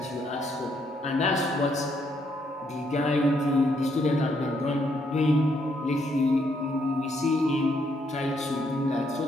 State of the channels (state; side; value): normal; both; correlation 0.73